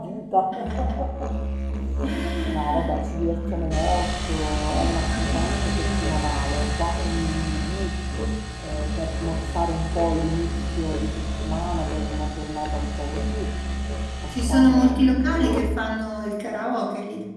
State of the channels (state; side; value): identical; both; correlation 1.00